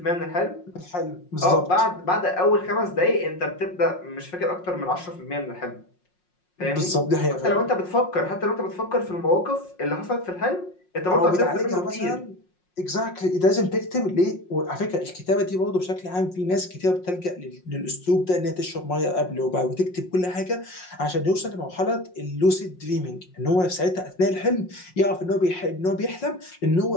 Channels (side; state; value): right; late; 5.5 ms